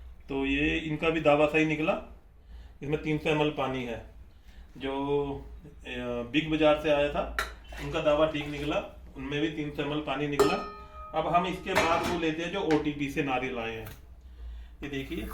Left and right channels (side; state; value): both; identical; correlation 1.00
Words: तो ये इनका भी दावा सही निकला, इसमें 300 ml पानी है। जो बिग बाजार से आया था उनका दावा ठीक निकला, उनमें भी 300 ml पानी निकला। अब हम इसके बाद वो लेते हैं जो OTP से नारियल आए हैं। ये देखिए